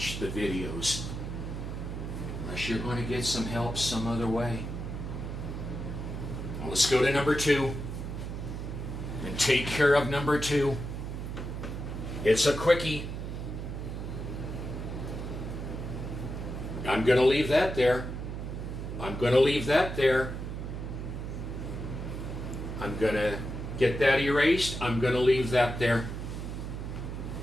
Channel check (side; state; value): right; noise; hum, 6 dB below the sound